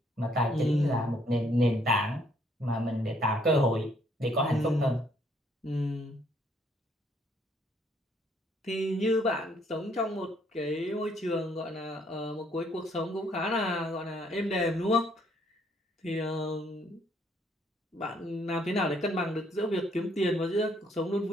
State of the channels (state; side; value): normal; both; correlation 0.67